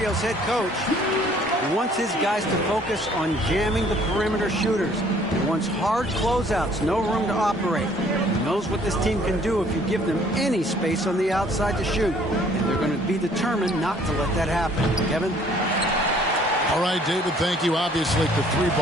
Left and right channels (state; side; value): normal; both; correlation 0.59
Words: head coach. He wants his guys to focus on jamming the perimeter shooters. He wants hard closeouts, no room to operate. He knows what this team can do if you give them any space on the outside to shoot. And they're going to be determined not to let that happen. Kevin? All right, David, thank you. Obviously, the three